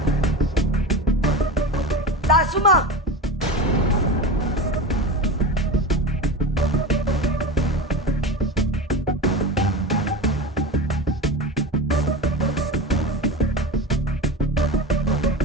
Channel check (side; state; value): both; normal; correlation 0.27